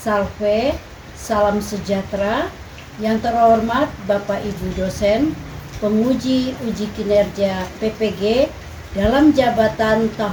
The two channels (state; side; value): identical; both; correlation 1.00